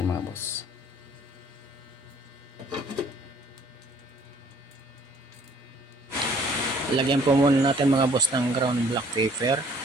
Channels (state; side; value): normal; both; correlation 0.58